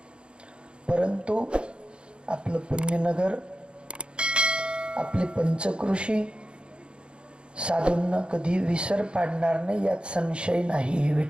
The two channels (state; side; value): late; left; 0.055 ms